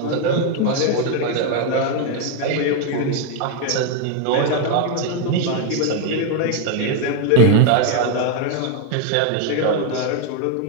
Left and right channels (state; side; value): different; both; correlation 0.01